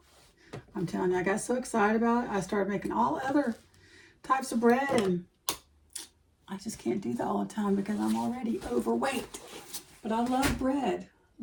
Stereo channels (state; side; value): identical; both; correlation 1.00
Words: I'm telling you, I got so excited about it. I started making all other types of bread, and I just can't do that all the time because I'm already overweight. But I love bread.